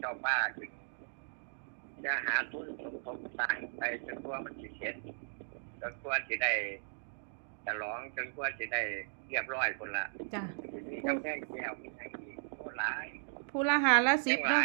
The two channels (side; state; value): left; silent; digital silence